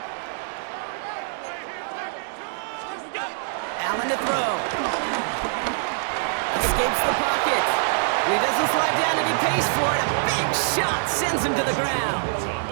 Allen to throw. Escapes the pocket. He doesn't slide down and he pays for it. A big shot sends him to the ground.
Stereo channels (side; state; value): left; silent; 62 dB below the other